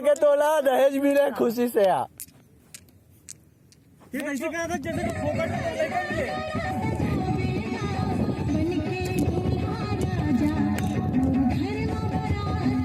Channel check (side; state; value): both; identical; correlation 1.00